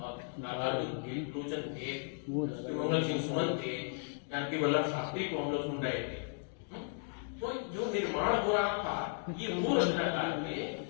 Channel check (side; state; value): right; silent; 54 dB below the other